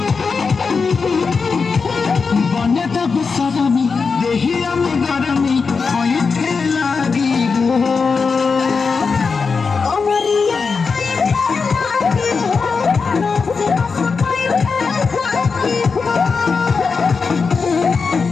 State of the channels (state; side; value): quieter; right; 5.0 dB